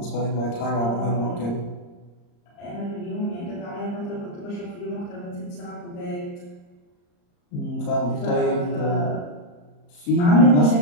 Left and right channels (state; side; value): late; right; 34 ms